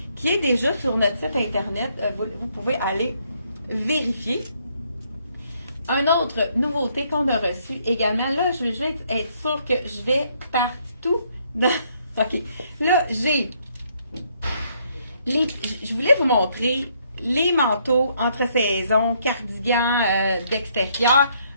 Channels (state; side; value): inverted; both; correlation -0.70